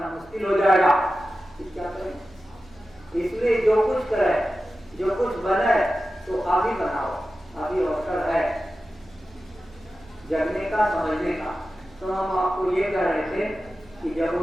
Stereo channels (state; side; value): noise; right; hum, 25 dB below the sound